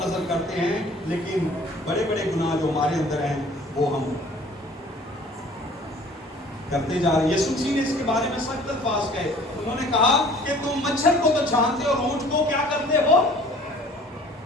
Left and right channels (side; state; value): both; normal; correlation 0.51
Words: نظر کرتے ہیں، لیکن بڑے بڑے گناہ جو ہمارے اندر ہیں وہ ہم کرتے جا رہے ہیں. یسوع مسیح نے اس کے بارے میں سخت الفاظ کہے. انہوں نے کہا کہ تم مچھر کو تو چھانتے اور اونٹ کو کیا کرتے ہو؟